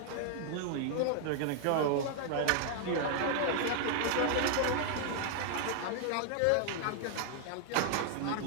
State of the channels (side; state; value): both; different; correlation 0.00